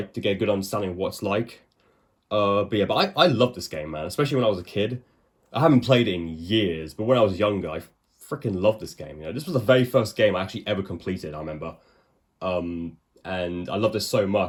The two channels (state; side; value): identical; both; correlation 1.00